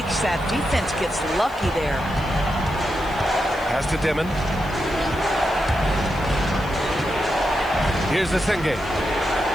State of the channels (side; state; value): left; noise; hiss, 23 dB below the sound